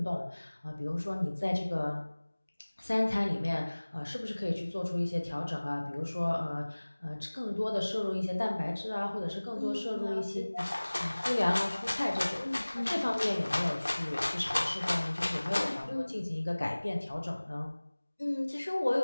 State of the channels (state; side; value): inverted; both; correlation -1.00